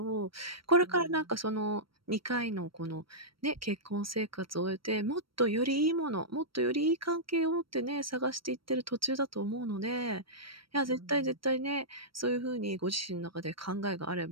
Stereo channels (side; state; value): left; late; 0.74 ms